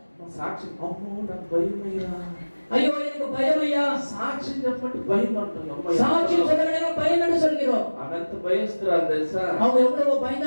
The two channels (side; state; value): both; inverted; correlation -1.00